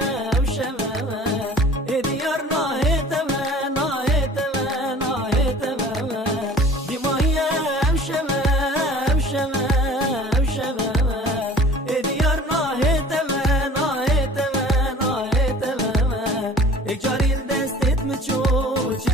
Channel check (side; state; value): both; normal; correlation 0.47